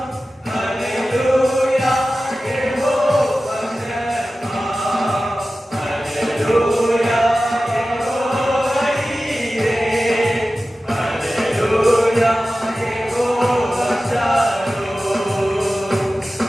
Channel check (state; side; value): normal; both; correlation 0.95